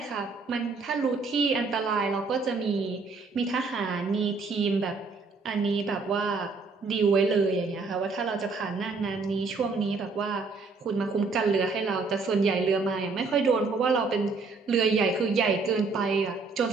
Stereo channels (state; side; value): quieter; left; 4.2 dB